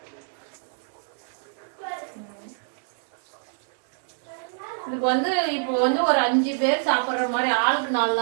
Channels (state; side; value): silent; left; 61 dB below the other